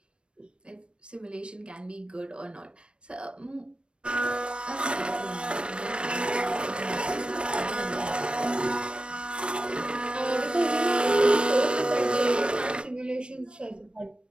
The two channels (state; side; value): late; left; 0.057 ms